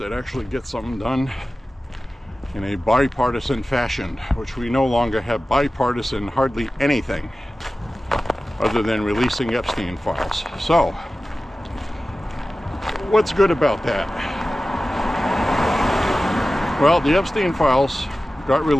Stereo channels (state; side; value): normal; both; correlation 0.95